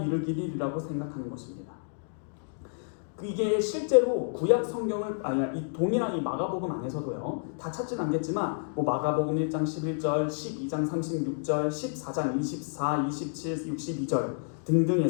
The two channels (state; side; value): silent; right; digital silence